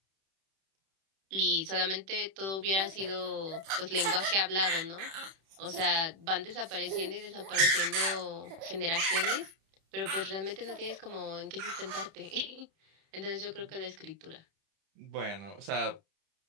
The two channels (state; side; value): late; left; 31 ms